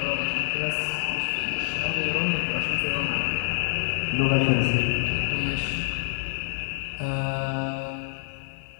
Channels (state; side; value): silent; right; 58 dB below the other